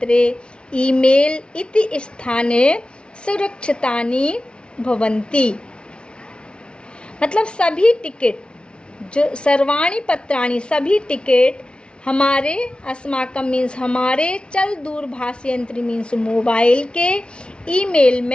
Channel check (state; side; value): late; right; 0.056 ms